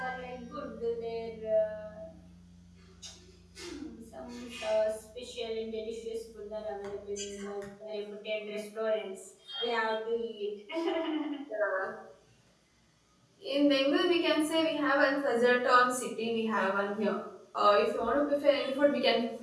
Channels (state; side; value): identical; both; correlation 1.00